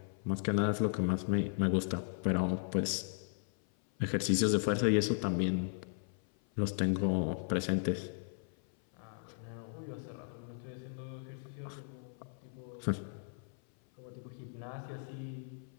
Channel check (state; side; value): silent; right; 54 dB below the other